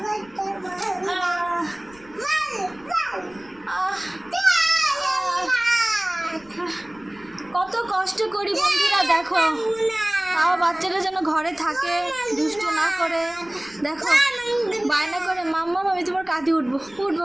কত কষ্ট করি বন্ধুরা দেখো, তাও বাচ্চারা যেন ঘরে থাকে, দুষ্ট না করে। দেখো বায়না করে মাম্মা আমি তোমার কাঁধে উঠবো। উঠ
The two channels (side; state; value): left; noise; rumble, 27 dB below the sound